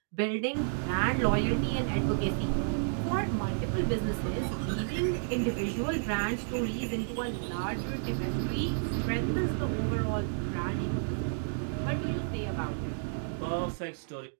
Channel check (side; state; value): left; silent; digital silence